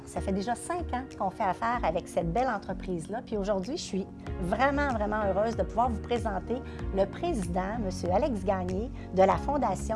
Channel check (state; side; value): identical; both; correlation 1.00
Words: Ça fait déjà 5 ans qu'on fait affaire avec cette belle entreprise-là. Puis aujourd'hui, je suis vraiment heureuse de pouvoir vous présenter le président, M. Alex Gagné, de la